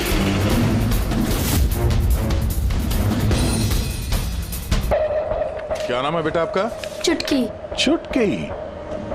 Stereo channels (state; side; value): identical; both; correlation 1.00